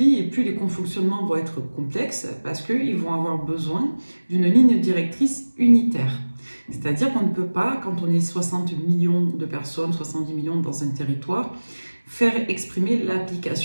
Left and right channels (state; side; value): inverted; both; correlation -1.00